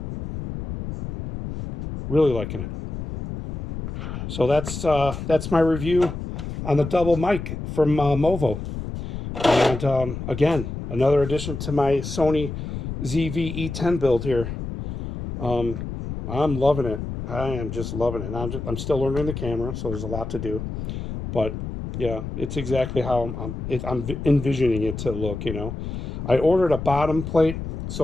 Really liking it. So that's my review on the DoubleMic from Movo. And again, another addition to my Sony ZV-E10 build here. I'm loving it. I am just loving it. I'm still learning the camera, so there's a lot to do. But yeah, it's exactly how I'm envisioning it to look, you know. I ordered a bottom plate,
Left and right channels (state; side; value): noise; left; rumble, 7 dB below the sound